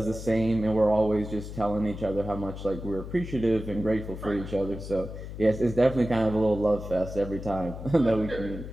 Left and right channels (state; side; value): noise; left; hum, 10 dB below the sound